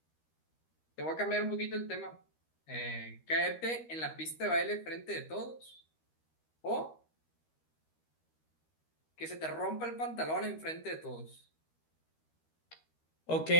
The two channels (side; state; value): right; late; 13 ms